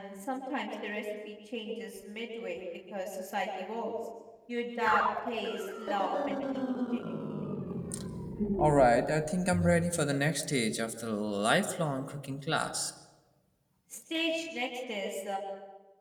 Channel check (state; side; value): identical; both; correlation 1.00